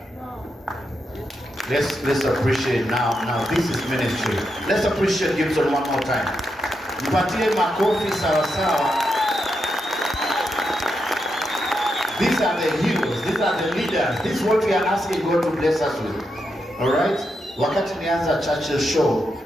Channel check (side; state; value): both; normal; correlation 0.84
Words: Let's appreciate now this is ministry. Let's appreciate Gibson one more time. Mpatie makofi sawa sawa. These are the heroes, these are the leaders. This is what we are asking God to bless us with. All right? Wakati nianza Churchill show,